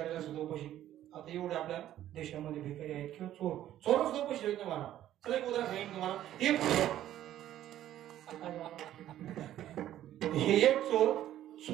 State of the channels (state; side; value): quieter; left; 12.4 dB